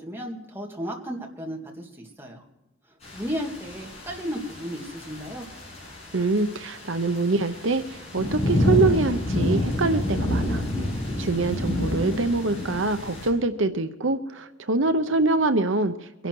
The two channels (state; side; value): normal; both; correlation 0.35